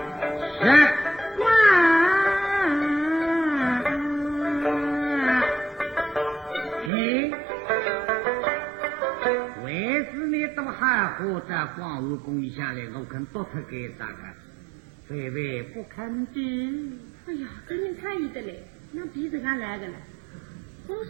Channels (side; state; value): left; drops out; at 6.9 s